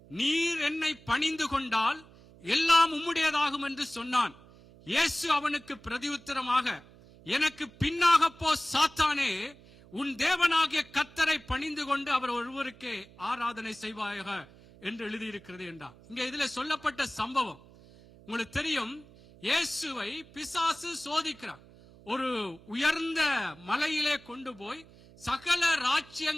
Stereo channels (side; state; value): right; noise; hum, 23 dB below the sound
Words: நீர் என்னை பணிந்து கொண்டால் எல்லாம் உம்முடையதாகும் என்று சொன்னான். இயேசு அவனுக்கு பிரதியுத்தரமாக, எனக்கு பின்னாக போ சாத்தானே, உன் தேவனாகிய கர்த்தரை பணிந்து கொண்டு அவர் ஒருவருக்கே ஆராதனை செய்வாயாக என்று எழுதியிருக்கிறது என்றார். இங்க இதுல சொல்லப்பட்ட சம்பவம் உங்களுக்கு தெரியும். இயேசுவை பிசாசு சோதிக்கிறார். ஒரு உயர்ந்த மலையிலே கொண்டு போய் சகல